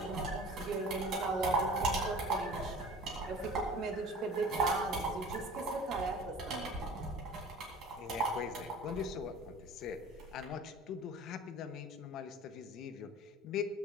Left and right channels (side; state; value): both; normal; correlation 0.42